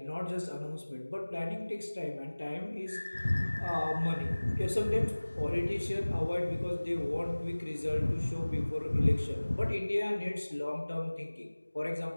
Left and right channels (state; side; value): inverted; both; correlation -1.00